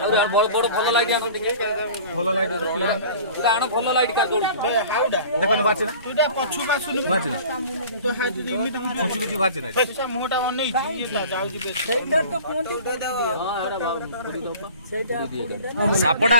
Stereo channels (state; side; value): inverted; both; correlation -0.43